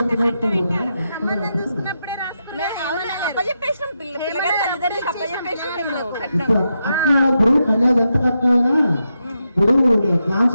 అప్పచెప్పేసినాం. పిల్లగారి తల్లిదండ్రులకి అప్పచెప్పేసినాం మేము కట్టినాం. ఇప్పుడు కన్యాది ఎంత కట్టినా ఇప్పుడు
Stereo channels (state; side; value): inverted; both; correlation -0.85